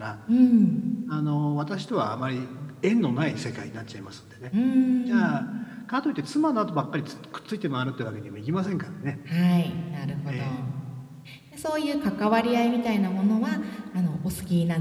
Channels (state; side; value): identical; both; correlation 1.00